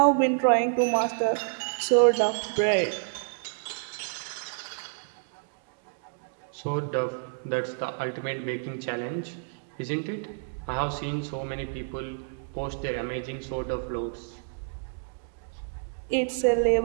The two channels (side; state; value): left; silent; digital silence